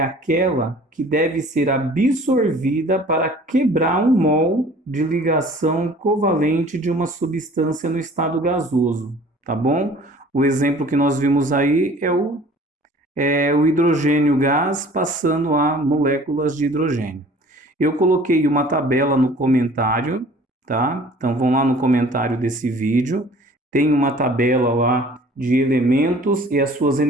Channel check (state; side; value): normal; both; correlation 0.50